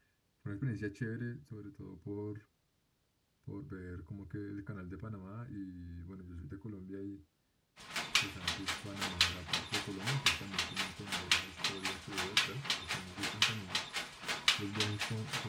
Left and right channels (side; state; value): both; identical; correlation 1.00